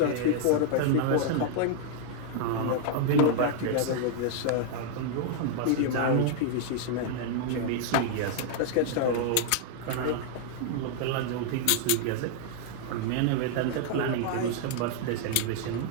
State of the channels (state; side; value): different; both; correlation -0.01